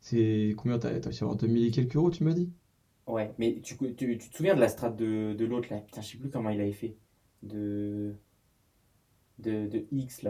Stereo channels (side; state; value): both; identical; correlation 1.00